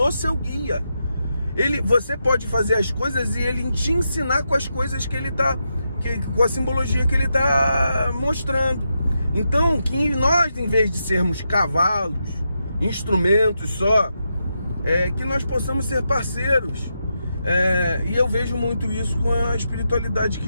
seu guia. Você pode fazer as coisas e ele te ensinar com as coisas que ele tá, com a simbologia que ele está mostrando. Então, que nós, em vez de sermos cavalos, instrumentos só, que nós possamos ser parceiros. E eu vejo muito isso com a espiritualidade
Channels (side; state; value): both; inverted; correlation -0.85